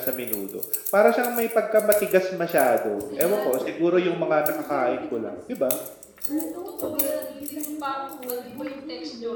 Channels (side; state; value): both; identical; correlation 1.00